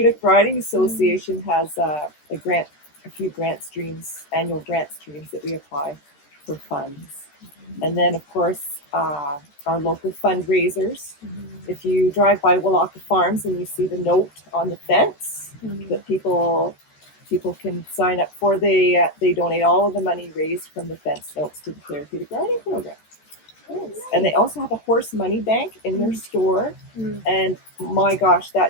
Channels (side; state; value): right; late; 13 ms